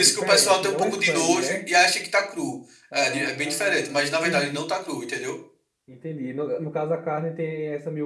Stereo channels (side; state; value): both; identical; correlation 1.00